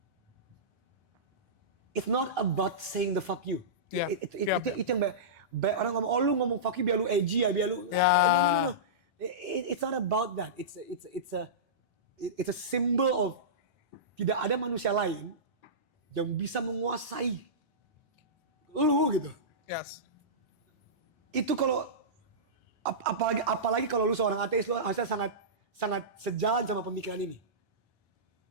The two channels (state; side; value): normal; both; correlation -0.18